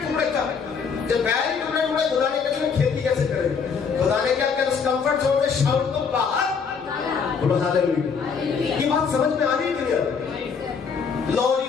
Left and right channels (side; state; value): right; quieter; 5.9 dB